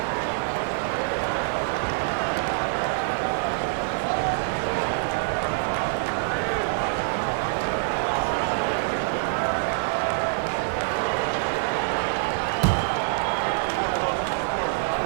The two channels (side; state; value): left; silent; digital silence